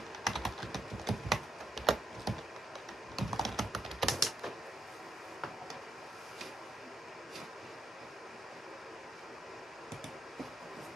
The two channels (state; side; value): normal; both; correlation 0.78